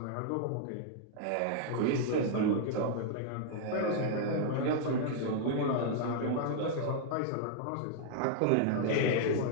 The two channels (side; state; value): both; different; correlation -0.01